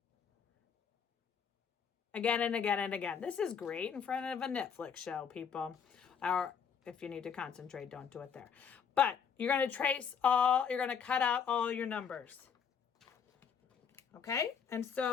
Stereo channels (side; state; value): right; quieter; 7.0 dB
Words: again and again and again. This is great in front of a Netflix show, people. Or if you need to concentrate, don't do it there. But you're going to you're going to cut out all your numbers. Okay? And